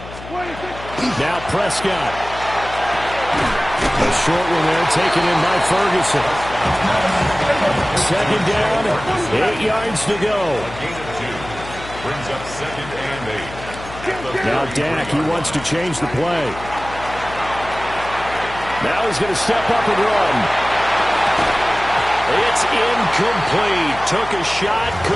26. Now Prescott. A short one there taken in by Ferguson. 2nd down, 8 yards to go. Brings up 2nd and 8. Now Dak, he wants to change the play. Now he's going to step up and run. It's incomplete. Took a shot,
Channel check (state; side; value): noise; left; hum, 14 dB below the sound